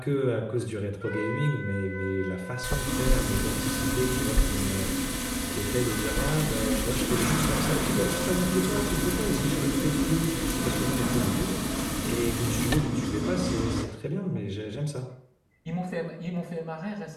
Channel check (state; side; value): identical; both; correlation 1.00